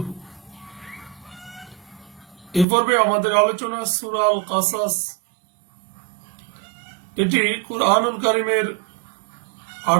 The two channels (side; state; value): left; drops out; at 2.7 s